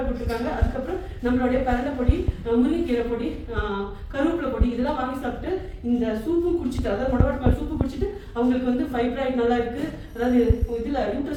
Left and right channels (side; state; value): both; identical; correlation 1.00